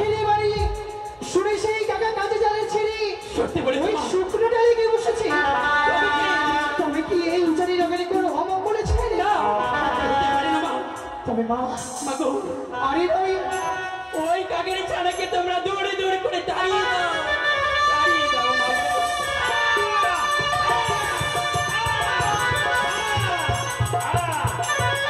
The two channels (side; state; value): both; identical; correlation 1.00